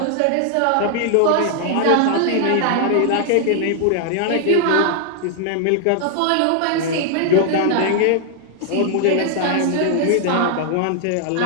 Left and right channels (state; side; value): different; both; correlation 0.00